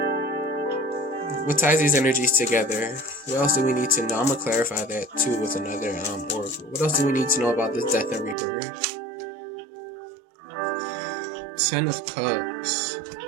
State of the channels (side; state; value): left; drops out; at 8.3 s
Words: What ties these energies together? What else do we need to know? I'm gonna clarify that too with another oracle. What else do we need to know about this death and rebirth? 10 of Cups